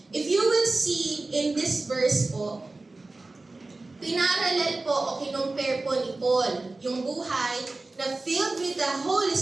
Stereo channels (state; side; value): quieter; left; 3.3 dB